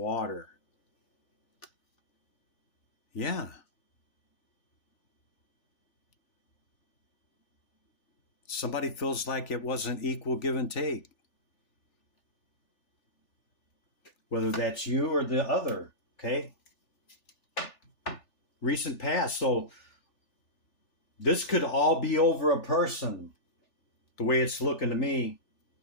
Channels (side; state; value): right; late; 3.4 ms